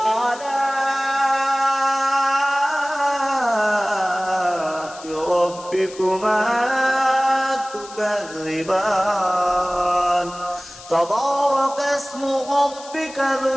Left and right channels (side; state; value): left; noise; hiss, 17 dB below the sound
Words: ربكما تكذبان تبارك اسم ربك ذو